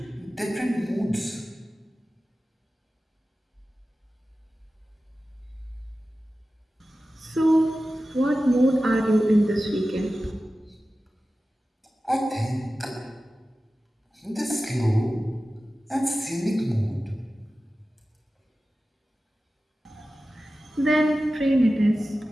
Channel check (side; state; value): both; normal; correlation 0.95